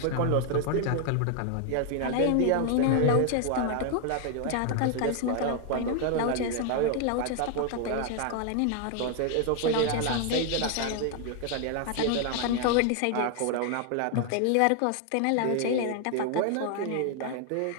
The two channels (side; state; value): both; different; correlation 0.00